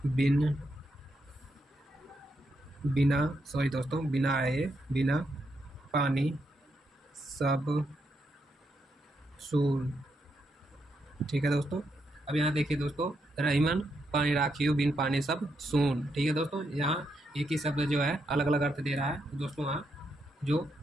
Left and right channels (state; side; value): normal; both; correlation 0.80